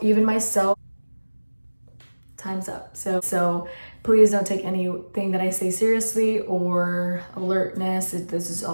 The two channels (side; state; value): both; inverted; correlation -1.00